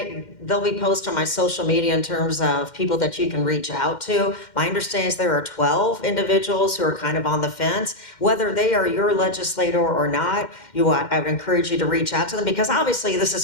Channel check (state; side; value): late; right; 2.1 ms